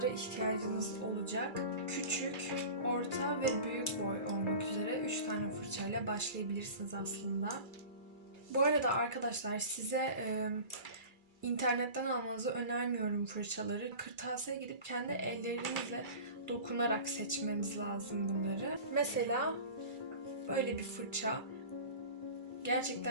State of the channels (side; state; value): left; late; 2.3 ms